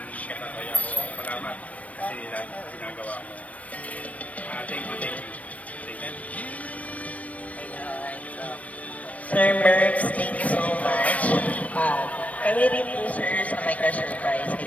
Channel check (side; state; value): right; late; 0.067 ms